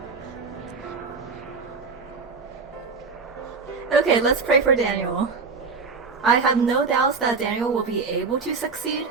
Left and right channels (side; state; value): left; quieter; 4.7 dB